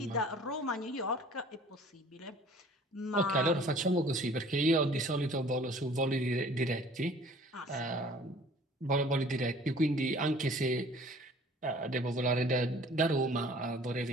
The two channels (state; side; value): normal; both; correlation 0.51